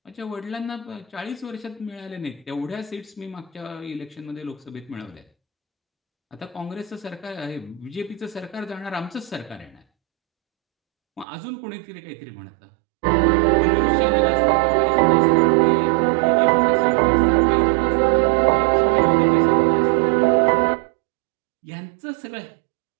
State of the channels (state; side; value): drops out; left; at 11.2 s